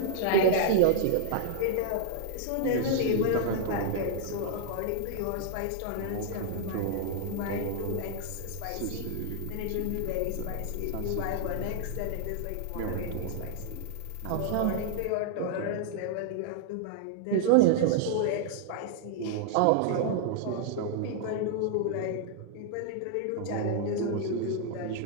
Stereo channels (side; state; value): both; different; correlation -0.01